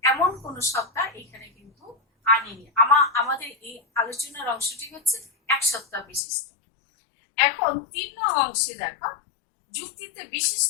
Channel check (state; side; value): drops out; right; at 6.2 s